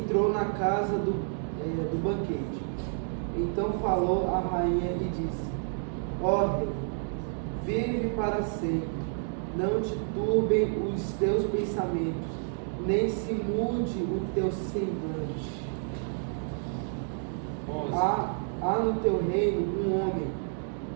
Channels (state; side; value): silent; left; 58 dB below the other